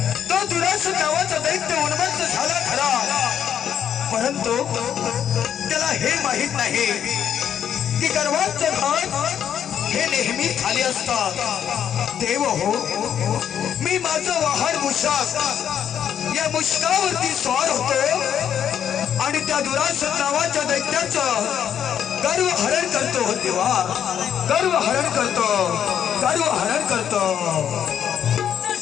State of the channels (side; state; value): right; quieter; 9.1 dB